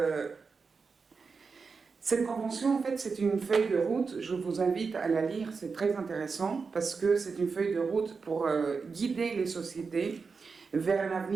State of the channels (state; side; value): quieter; left; 4.9 dB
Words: cette convention, en fait, c'est une feuille de route. Je vous invite à la lire, c'est très intéressant, parce que c'est une feuille de route pour guider les sociétés vers un